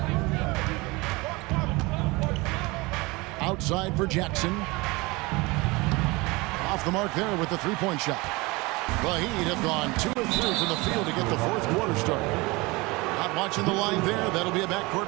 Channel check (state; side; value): quieter; left; 24.0 dB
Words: Outside for Jackson. Off the mark there with the three-point shot. The Heat have gone 2 of 3 from the field to get the fourth quarter started. Not watching the line there. That'll be a